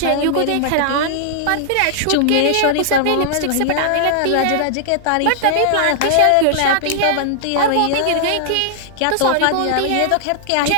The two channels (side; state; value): both; different; correlation -0.01